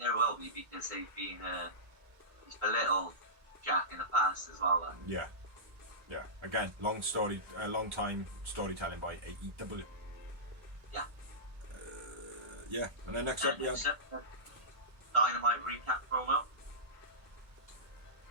will be, because they've been he's belittled Jack in the past as well. Yeah. Yeah, again, long time storytelling by AEW. Yeah. Yeah, and then next up we have Dynamite recap promo.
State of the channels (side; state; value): left; late; 1.3 ms